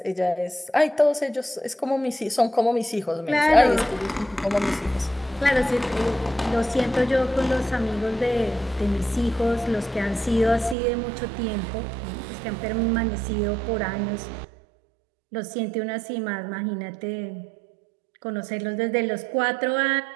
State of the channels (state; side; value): drops out; left; at 10.8 s